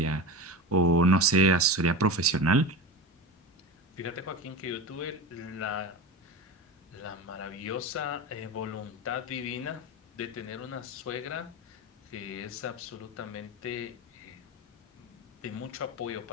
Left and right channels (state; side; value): normal; both; correlation 0.26